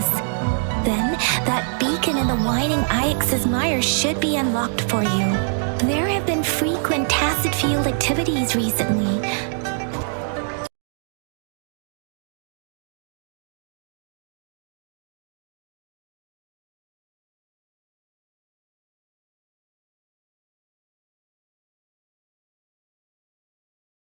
Then, that beacon in the Whining Ix's mire should be unlocked for you. There have been frequent tacit field activities recently.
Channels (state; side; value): silent; left; digital silence